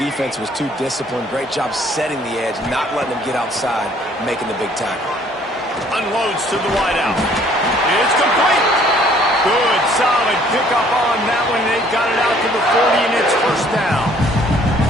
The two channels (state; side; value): normal; both; correlation 0.59